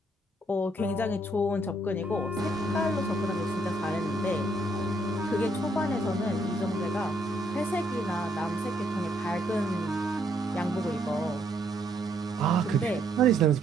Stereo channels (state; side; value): normal; both; correlation 0.71